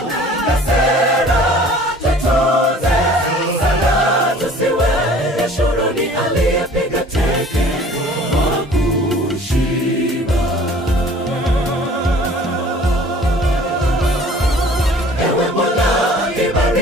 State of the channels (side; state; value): both; normal; correlation 0.49